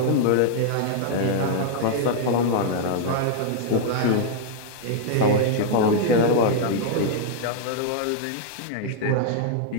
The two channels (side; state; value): both; different; correlation -0.01